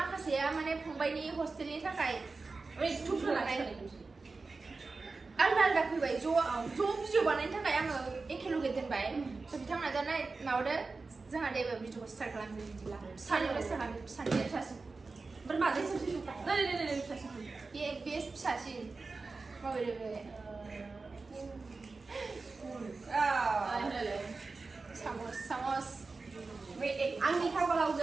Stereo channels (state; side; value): quieter; left; 3.9 dB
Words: माने फंबायनि हस्टेलनि थाखाय आलदा आलदा फैबाय ज' भिडिअ बानायनो थाखाय आङो एखेलगे दोनबाय स' बिथांमोना दा माबादो जोंहा दे भिडिअखौ स्टार्ट खालामसै बिदिब्ला फिसानिफ्राय फिसानिफ्राय फिसासिन बे फिसासिन माबायदि बे सामस आंनि खाफालाव